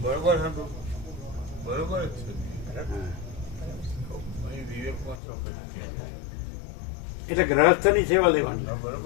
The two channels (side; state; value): right; drops out; at 5.2 s